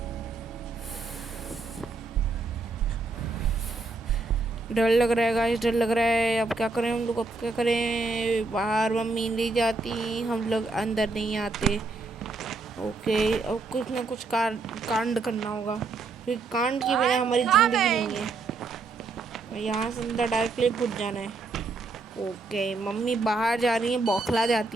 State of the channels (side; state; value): left; quieter; 3.7 dB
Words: डर लग रहा है गाइस, डर लग रहा है। अब क्या करें हम लोग, अब क्या करें? बाहर मम्मी नहीं जाती, हम लोग अंदर नहीं आते। ओके, अब कुछ ना कुछ कांड करना होगा, क्योंकि कांड के बिना हमारी ज़िंदगी नहीं है। यहाँ से अंदर डायरेक्टली घुस जाना है। ओके, मम्मी बाहर जा रही हैं, बौखला